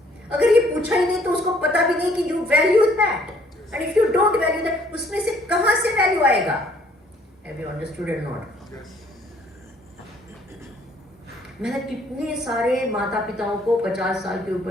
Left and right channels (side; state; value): both; normal; correlation 0.62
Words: अगर ये पूछा ही नहीं तो उसको पता भी नहीं कि you value that, and if you don't value that, उसमें से कहां से वैल्यू आएगा? Have you understood or not? मैंने कितने सारे माता पिताओं को 50 साल के